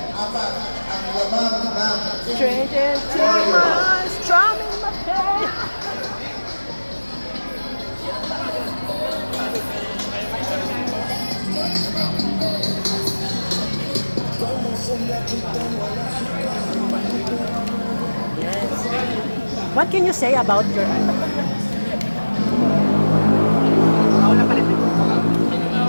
Apat ang lamang ng Traded to my strum in my head. What can you say about your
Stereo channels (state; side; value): inverted; both; correlation -1.00